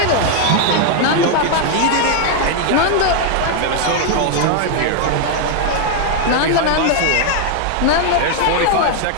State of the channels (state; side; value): different; both; correlation 0.00